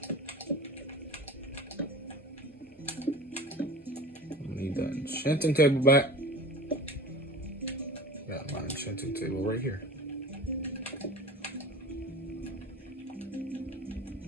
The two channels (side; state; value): both; normal; correlation 0.38